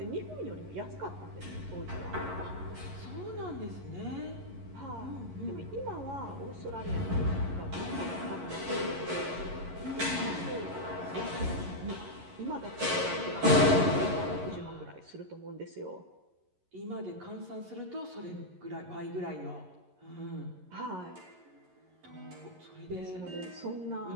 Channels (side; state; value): left; late; 11 ms